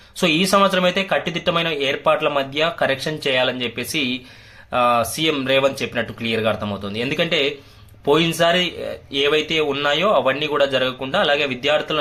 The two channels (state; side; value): identical; both; correlation 1.00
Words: సో ఈ సంవత్సరం అయితే కట్టుదిట్టమైన ఏర్పాట్ల మధ్య కరెక్షన్ చేయాలని చెప్పేసి సీఎం రేవంత్ చెప్పినట్టు క్లియర్ గా అర్థమవుతుంది. ఎందుకంటే పోయినసారి ఏవైతే ఉన్నాయో అవన్నీ కూడా జరగకుండా, అలాగే విద్యార్థుల